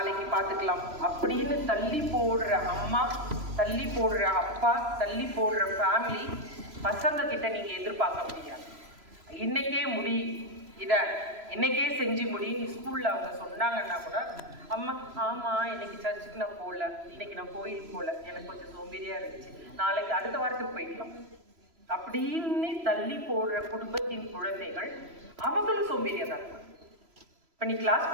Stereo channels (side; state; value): left; late; 3.0 ms